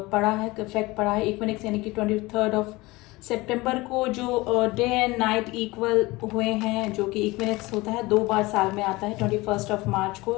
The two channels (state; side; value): quieter; right; 21.6 dB